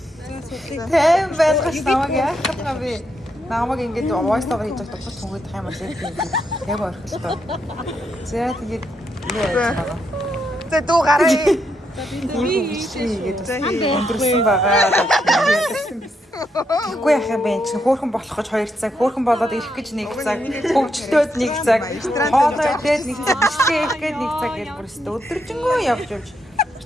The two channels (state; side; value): normal; both; correlation 0.80